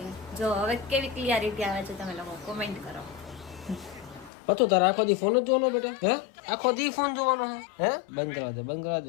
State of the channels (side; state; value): right; drops out; at 4.3 s